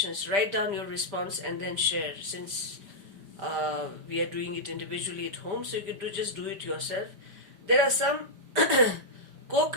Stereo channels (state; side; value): late; left; 5.1 ms